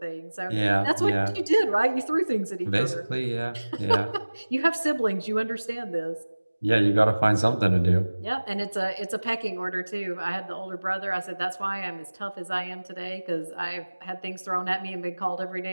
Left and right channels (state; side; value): inverted; both; correlation -1.00